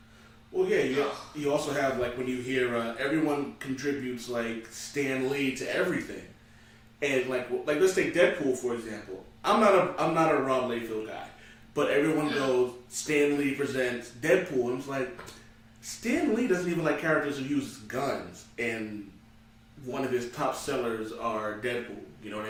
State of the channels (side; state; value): both; identical; correlation 1.00